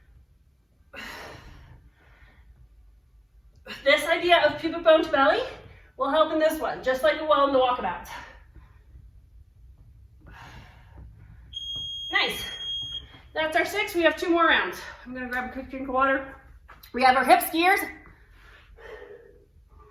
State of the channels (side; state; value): both; identical; correlation 1.00